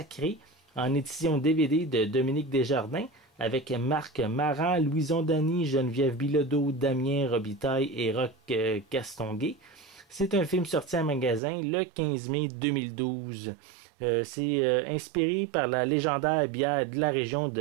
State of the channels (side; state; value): left; drops out; at 11.4 s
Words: en édition DVD de Dominique Desjardins, avec Marc Maran, Louison Dany, Geneviève Bilodeau, Damien Robitaille et Roch Castonguay. C'est un film sorti en magasin le 15 mai 2012. C'est inspiré par la légendaire bière de la région